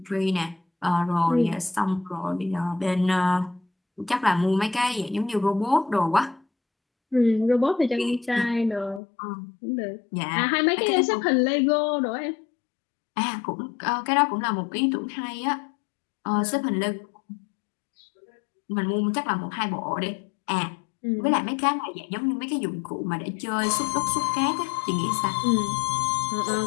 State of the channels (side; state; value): right; drops out; at 9.0 s